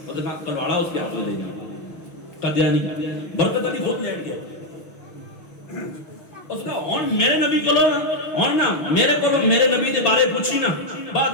نے کہا کلواڑا اس کے ہاتھ میں دے دیا. قادیانی برکت علی خود لیٹ گیا اس کا ہن میرے نبی کو لو ہن نا میرے کو میرے نبی دے بارے پوچھی نا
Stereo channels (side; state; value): right; late; 6.3 ms